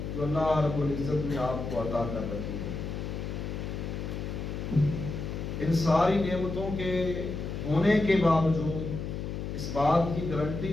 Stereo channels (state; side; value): noise; left; hum, 5 dB below the sound